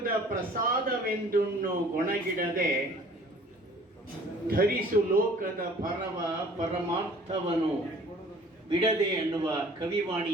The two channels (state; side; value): normal; both; correlation 0.51